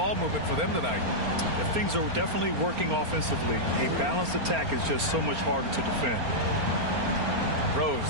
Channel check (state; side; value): late; left; 4.3 ms